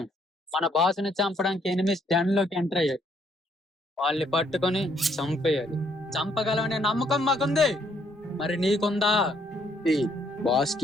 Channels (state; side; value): normal; both; correlation 0.69